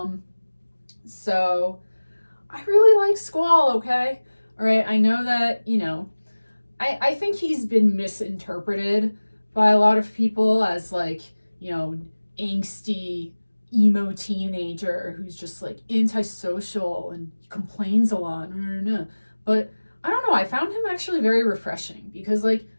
So I really like Squall, okay? All right, I know that, you know, I think he's been misinterpreted by a lot of people as like, you know, angsty, emo teenager who's just like antisocial and complains a lot. But I don't know, I found him actually very refreshing because like,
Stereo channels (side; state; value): both; inverted; correlation -1.00